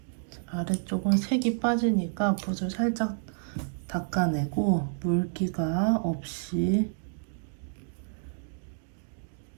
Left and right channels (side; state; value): left; silent; digital silence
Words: 아래쪽은 색이 빠지니까 붓을 살짝 닦아내고 물기가 없이